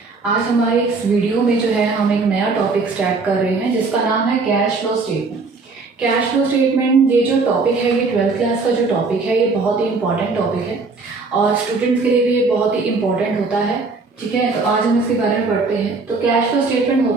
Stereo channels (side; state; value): left; quieter; 4.1 dB